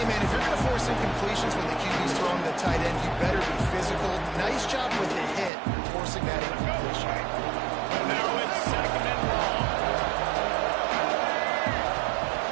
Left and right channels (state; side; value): drops out; left; at 5.5 s